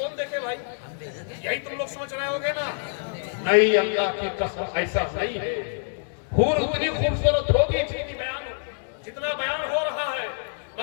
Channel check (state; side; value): silent; right; digital silence